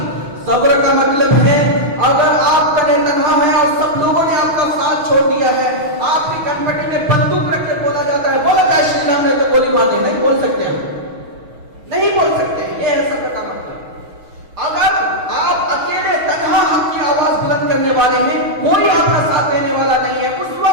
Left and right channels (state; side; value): late; left; 6.3 ms